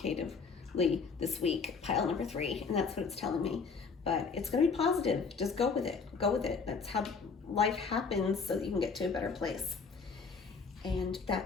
this week, pile number 3, and that's what it's telling me. But it's going to be positive. Just go with it. Go with it. That's how life happens, so that you can get to a better place. And that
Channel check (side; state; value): right; quieter; 5.1 dB